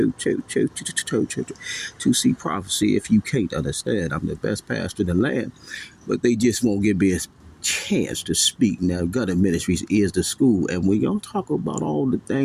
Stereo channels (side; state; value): both; identical; correlation 1.00